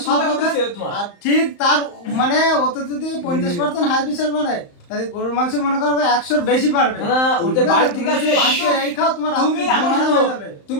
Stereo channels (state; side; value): late; right; 35 ms